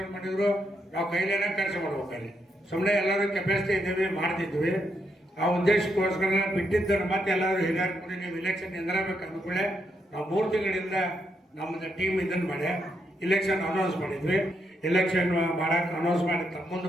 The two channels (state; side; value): normal; both; correlation 0.79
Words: ಮಾಡಿದ್ರು ನಾವು ಕೈಲೇನೆ ಖರ್ಚು ಮಾಡ್ಬೇಕು. ಅಲ್ಲಿ ಸುಮ್ಮನೆ ಎಲ್ಲರೂ ಕೆಪಾಸಿಟಿ ಇದ್ದೀವಿ, ಮಾಡ್ತಿದ್ವಿ. ಆ ಉದ್ದೇಶಕ್ಕೋಸ್ಕರ ಬಿಟ್ಟಿದ್ದರು. ಮತ್ತೆ ಎಲ್ಲರೂ ಹಿರಿಯರು ಕೂಡ ನೀವು ಇಲೆಕ್ಷನ್ ನಿಂದಿರಬೇಕು ಅಂದ್ಕೊಳ್ಳೆ ನಾವು 3 ತಿಂಗಳಿಂದ ನಮ್ಮದು ಟೀಮ್ ಇದನ್ನು ಮಾಡಿ ಇಲೆಕ್ಷನ್ ಅನೌನ್ಸ್ ಮಾಡಿದ್ವಿ. ಇಲೆಕ್ಷನ್ ಮಾಡಕ್ಕೆ ಅನೌನ್ಸ್ ಮಾಡಿ ಮುಂದೆ